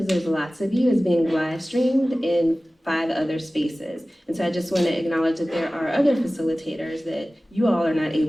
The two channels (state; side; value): normal; both; correlation 0.97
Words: there's lots of you, is being live streamed in 5 other spaces. And so I just wanna acknowledge that there are other facilitators that you all are not